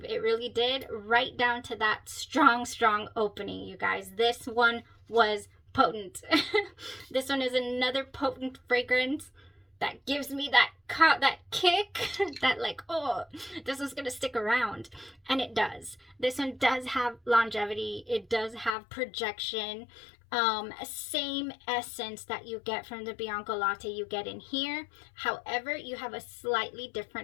It really did, right down to that strong opening, you guys. This one was potent. This one is another potent fragrance that gives me that kick, that like, oh, this is gonna stick around. And it does. This one does have longevity. It does have projection. Same essence that you get from the Bianco Latte you get in here. However, you have a slightly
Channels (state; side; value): drops out; right; at 18.8 s